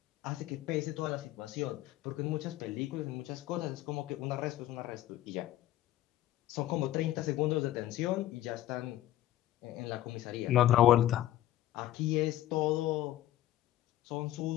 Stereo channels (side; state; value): right; quieter; 14.0 dB